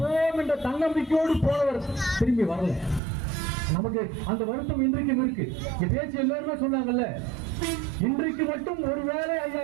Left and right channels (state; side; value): drops out; left; at 3.0 s